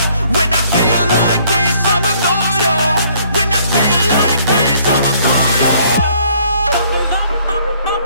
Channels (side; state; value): both; inverted; correlation -0.63